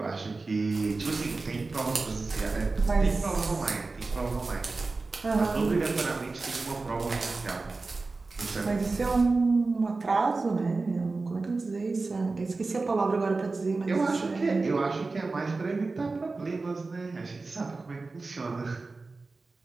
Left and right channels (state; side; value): quieter; left; 3.7 dB